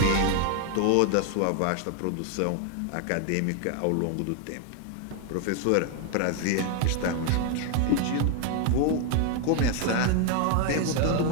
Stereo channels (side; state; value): both; different; correlation 0.00